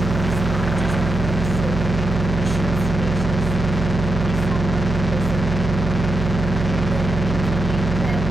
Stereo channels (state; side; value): noise; right; hum, 4 dB below the sound